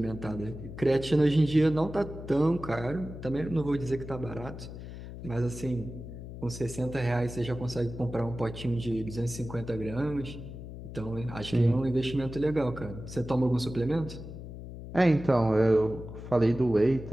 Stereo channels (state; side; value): noise; left; hum, 11 dB below the sound